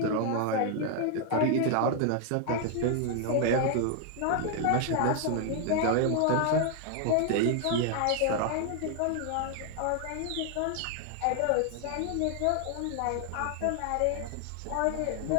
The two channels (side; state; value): both; different; correlation 0.00